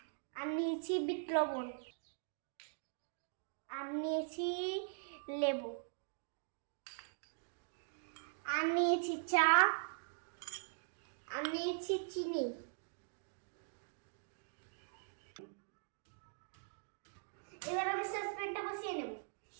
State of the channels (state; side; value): silent; left; digital silence